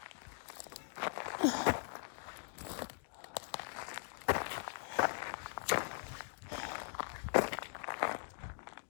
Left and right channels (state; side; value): silent; right; digital silence